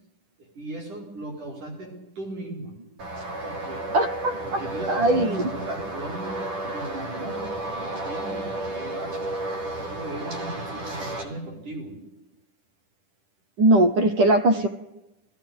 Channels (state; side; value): late; left; 10 ms